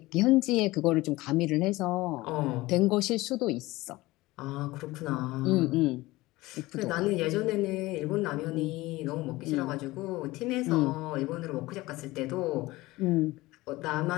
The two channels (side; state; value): right; quieter; 19.6 dB